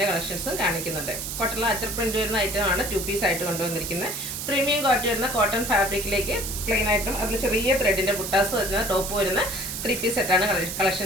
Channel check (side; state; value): right; noise; hiss, 5 dB below the sound